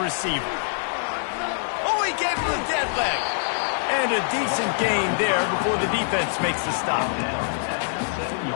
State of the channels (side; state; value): right; silent; digital silence